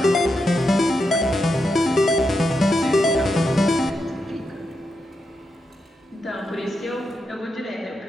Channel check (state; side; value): normal; both; correlation 0.85